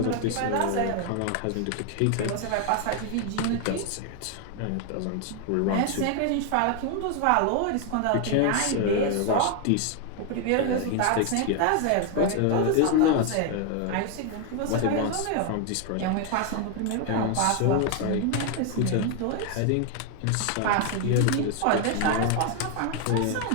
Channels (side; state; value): both; different; correlation 0.01